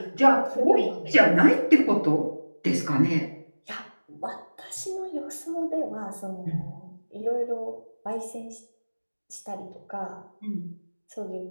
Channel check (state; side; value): inverted; both; correlation -1.00